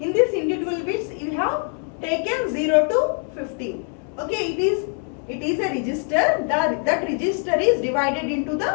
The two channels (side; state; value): right; quieter; 38.2 dB